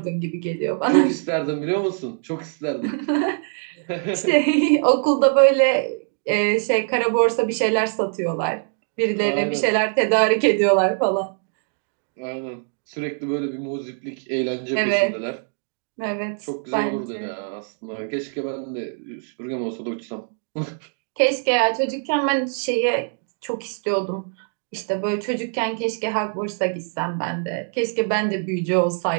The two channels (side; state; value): left; silent; 57 dB below the other